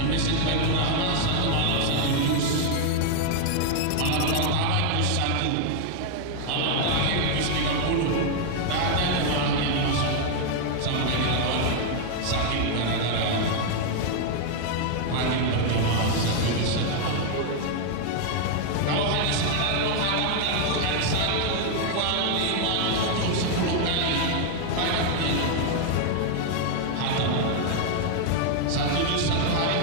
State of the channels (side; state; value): both; different; correlation 0.00